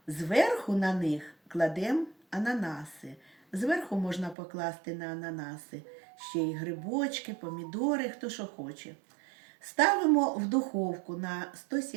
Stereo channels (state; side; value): drops out; left; at 4.4 s